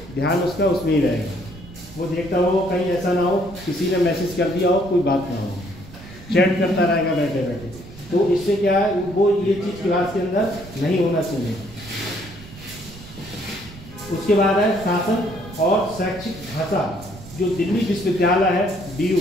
ध्यान उसका उसमें ही रहेगा, वो देखता हो कहीं ऐसा ना हो किसी ने मैसेज कर दिया हो, कोई बात ना हो, चैट करता रहेगा बैठे बैठे। तो इससे क्या है, वो ये चीज़ क्लास के अंदर नहीं होना चाहिए। उसके बाद है शासन और शैक्षिक भाषा। जो दिल्ली विश्वविद्यालय है DU,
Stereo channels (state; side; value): noise; right; rumble, 17 dB below the sound